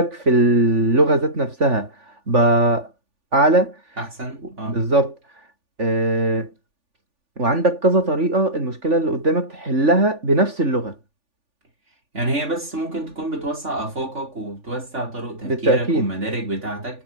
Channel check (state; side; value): late; left; 3.5 ms